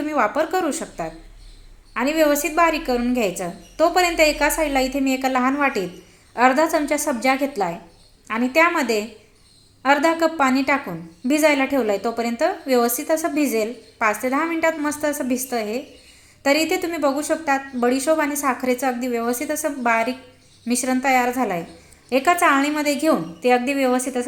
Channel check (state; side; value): identical; both; correlation 1.00